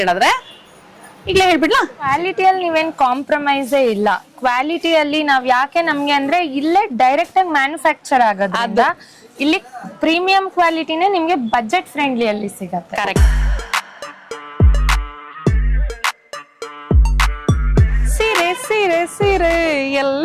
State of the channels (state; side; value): identical; both; correlation 1.00